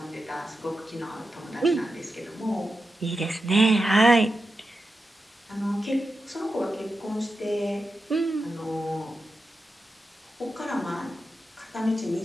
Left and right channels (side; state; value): both; normal; correlation 0.90